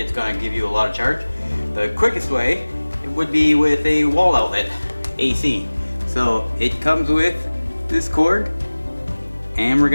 going to give you a lot of charge. The quickest way would be with a wall outlet, AC. So it comes with this cord, and we're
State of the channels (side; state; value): both; inverted; correlation -1.00